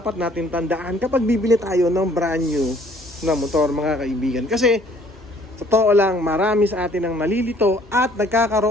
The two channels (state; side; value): normal; both; correlation 0.58